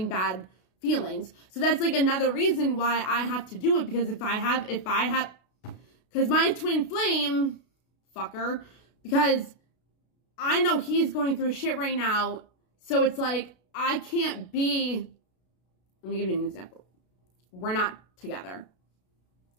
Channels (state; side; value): late; right; 32 ms